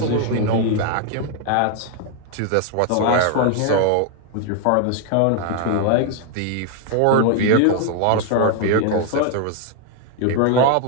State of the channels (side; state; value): both; different; correlation 0.00